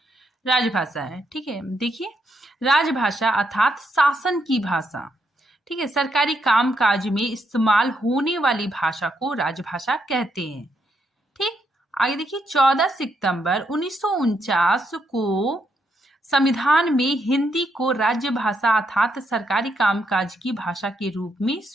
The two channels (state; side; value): normal; both; correlation 0.78